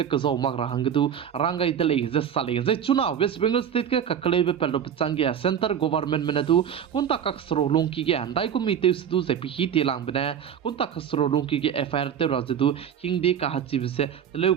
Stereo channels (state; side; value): quieter; left; 8.7 dB